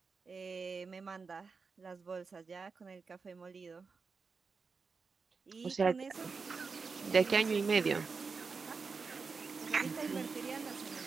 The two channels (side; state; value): left; quieter; 4.9 dB